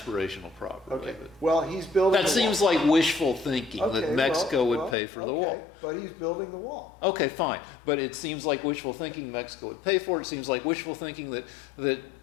properly. Okay. Well, he's building. That seems like wishful thinking that Mexico would pay for the wall. But he's building the wall. Okay, fine. But it seems like wishful thinking Mexico would pay for it. It seems like wishful thinking that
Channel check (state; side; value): drops out; right; at 5.0 s